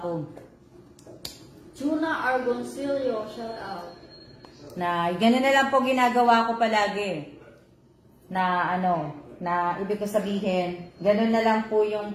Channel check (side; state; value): both; identical; correlation 1.00